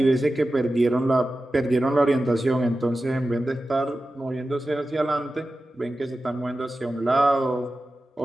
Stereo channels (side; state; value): both; normal; correlation 0.94